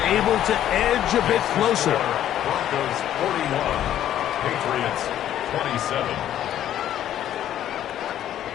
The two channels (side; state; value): right; quieter; 11.5 dB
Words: able to edge a bit closer. Broncos 41, Patriots 27.